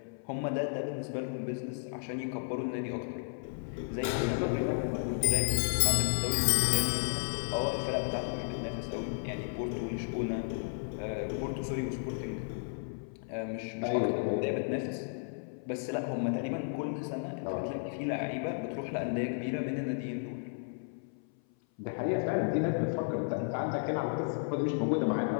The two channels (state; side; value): silent; right; 55 dB below the other